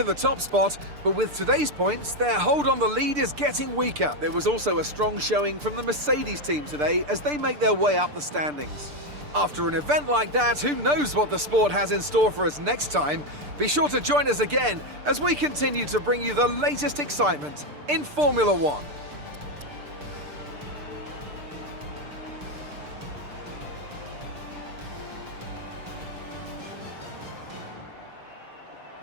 the top spot, but with today's points, their hold on the lead is getting weaker. There was also a strong showing from the Mercedes team today as they make their way up the standings. After an event like that, who knows what the sport has in store for us next time? Be sure to join us again as we continue to bring you the latest excitement in Formula One.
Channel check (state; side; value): late; left; 6.8 ms